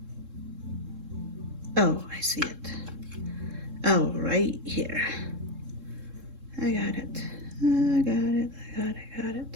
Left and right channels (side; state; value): left; late; 3.7 ms